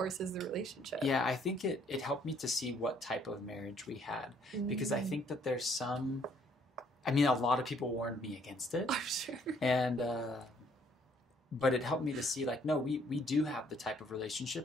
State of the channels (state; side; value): normal; both; correlation 0.64